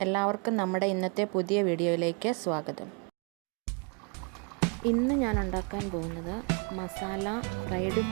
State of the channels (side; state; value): left; quieter; 35.2 dB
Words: എല്ലാവർക്കും നമ്മുടെ ഇന്നത്തെ പുതിയ വീഡിയോയിലേക്ക് സ്വാഗതം. ഇന്ന് ഞാൻ ഉണ്ടാക്കാൻ പോകുന്നത് മസാല ഫ്രൈഡ്